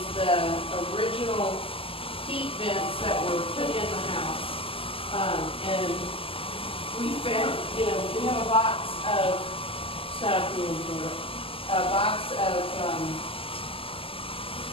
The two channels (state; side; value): late; right; 0.26 ms